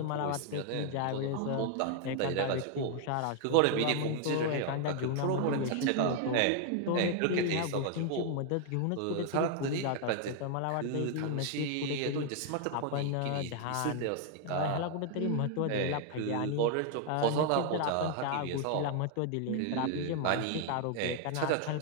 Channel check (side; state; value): both; different; correlation 0.00